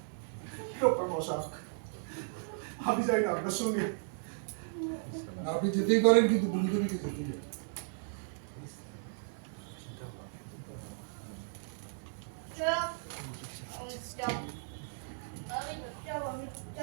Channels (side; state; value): left; silent; 54 dB below the other